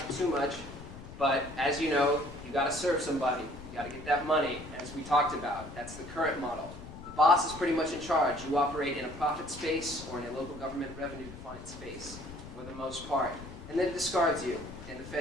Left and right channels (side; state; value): left; noise; rumble, 14 dB below the sound